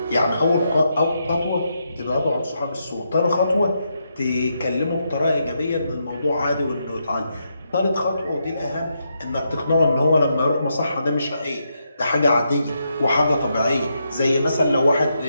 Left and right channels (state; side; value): inverted; both; correlation -0.81